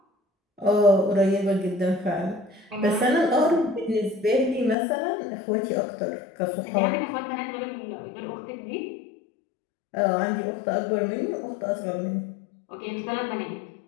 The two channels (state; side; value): drops out; right; at 4.8 s